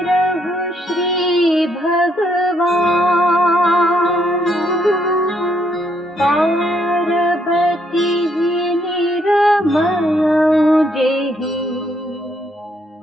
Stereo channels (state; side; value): normal; both; correlation 0.72